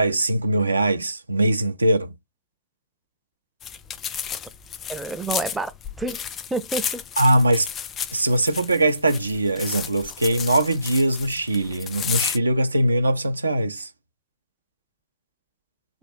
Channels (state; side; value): inverted; both; correlation -0.72